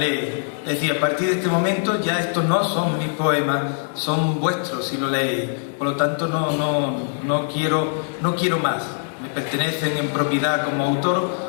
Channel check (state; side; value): silent; right; digital silence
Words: Es decir, a partir de este momento ya estos no son mis poemas, son vuestros si lo leéis. Por lo tanto, no quiero más. Me pertenecen en propiedad como autor,